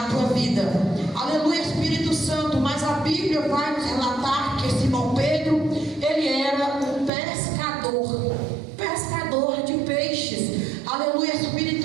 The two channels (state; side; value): drops out; left; at 7.1 s